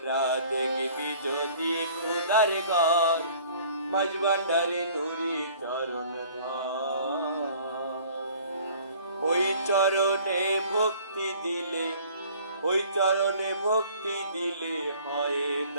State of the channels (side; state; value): both; inverted; correlation -0.52